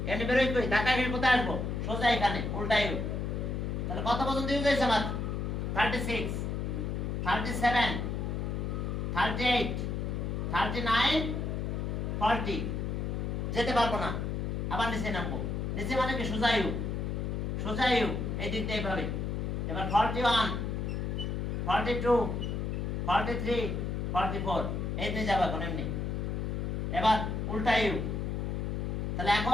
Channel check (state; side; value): noise; left; hum, 1 dB below the sound